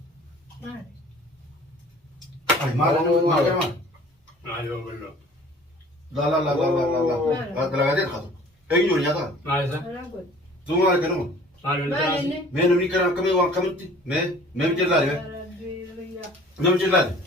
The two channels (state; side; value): normal; both; correlation 0.49